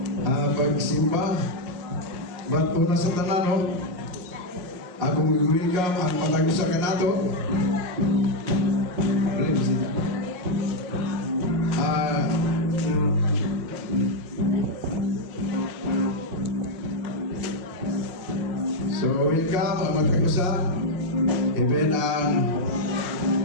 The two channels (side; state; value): left; late; 5.5 ms